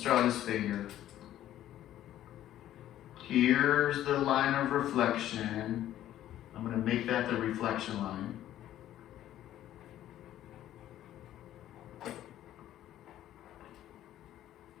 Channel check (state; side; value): quieter; right; 12.6 dB